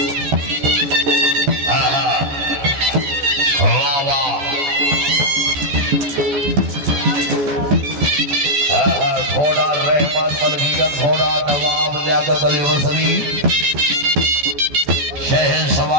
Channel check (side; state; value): left; late; 14 ms